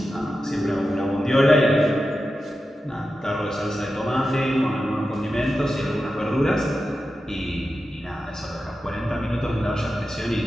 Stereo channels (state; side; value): normal; both; correlation 0.91